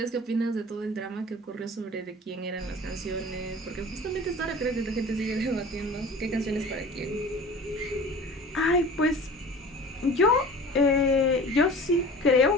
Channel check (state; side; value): normal; both; correlation 0.41